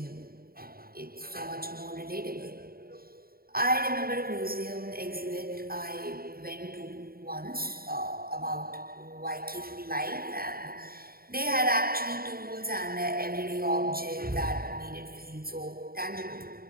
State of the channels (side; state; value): left; late; 0.43 ms